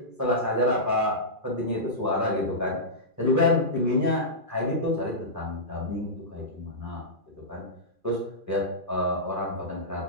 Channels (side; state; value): left; late; 2.4 ms